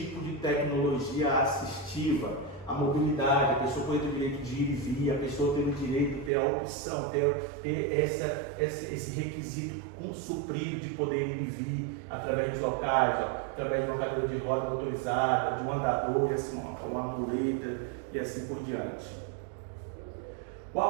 de tecnologia assistiva. A mobilidade, a pessoa pode ter o direito de ir e vir, a pessoa tem o direito de ter a opção, ter esse requisito suprido de poder ir e vir através dos locais, através de uma cadeira de roda motorizada, de um andador, uma muleta e assim por diante.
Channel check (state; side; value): drops out; left; at 6.3 s